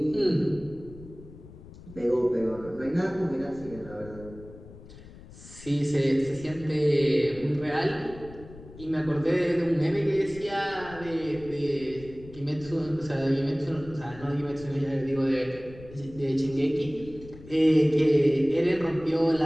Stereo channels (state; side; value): noise; left; rumble, 18 dB below the sound